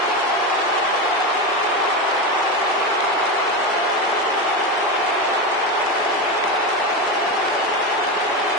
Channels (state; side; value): normal; both; correlation 0.17